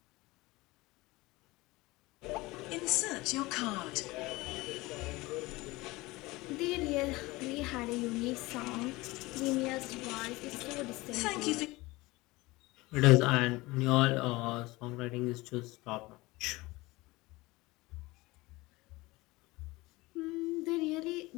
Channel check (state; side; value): quieter; right; 21.3 dB